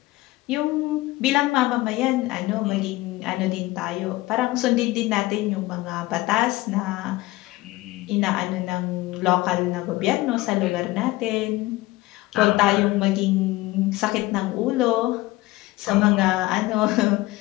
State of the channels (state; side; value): quieter; right; 19.0 dB